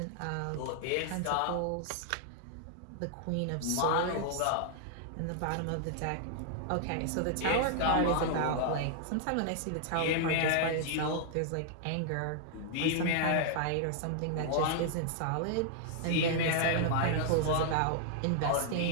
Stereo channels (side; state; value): both; different; correlation -0.01